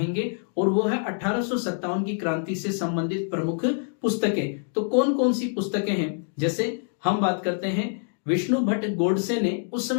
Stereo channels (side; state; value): right; silent; digital silence